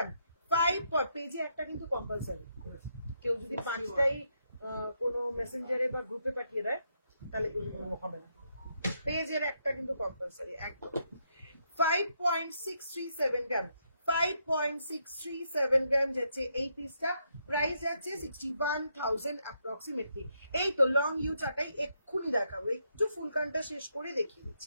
5 পেজে একটা কিন্তু কম্পালসারি কেউ যদি 5টাই কোনো মেসেঞ্জারে বা গ্রুপে পাঠিয়ে দেয় তাহলে কিন্তু হবে না পেজের একটা কিন্তু কম্পালসারি একদম 5.637 গ্রাম 5.637 গ্রাম যাচ্ছে এই পিসটা প্রাইস যাচ্ছে 61,000 অ্যাপ্রক্সিমেটলি এই তো লং ইউ চাটাই এক্ষুনি দেখাবো একটু ফুলকানটা শেষ করে দেখিয়ে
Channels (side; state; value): both; inverted; correlation -0.78